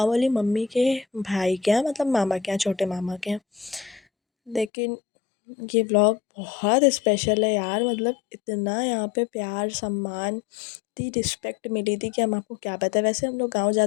वाली मम्मी के भाई के यहाँ, मतलब मामा के यहाँ, छोटे मामा के यहाँ। लेकिन ये व्लॉग बहुत स्पेशल है यार, मतलब इतना यहाँ पे प्यार सम्मान, इतनी रिस्पेक्ट मिली थी कि हम आपको क्या बताएं। वैसे हम लोग गाँव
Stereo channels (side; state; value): right; drops out; at 4.7 s